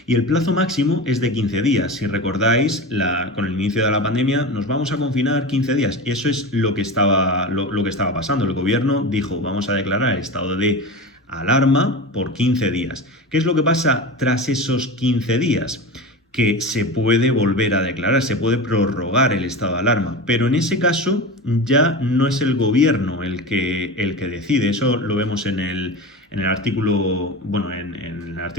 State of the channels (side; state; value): both; normal; correlation 0.27